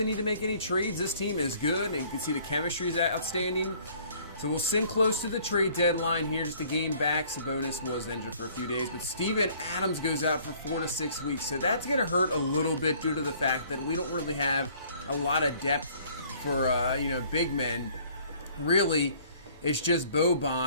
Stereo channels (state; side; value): inverted; both; correlation -0.57